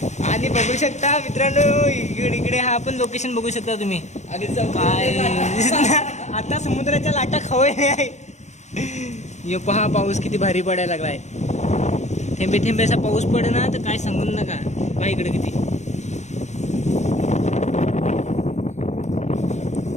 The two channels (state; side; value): late; right; 0.33 ms